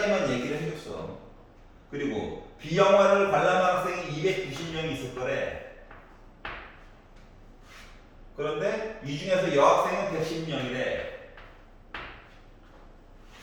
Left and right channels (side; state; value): both; identical; correlation 1.00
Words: 얘기를 해줬어. 그리고 B 영화를 관람한 학생이 290명이 있을 거래. 그런데 이 중에서 여학생은 110명이래.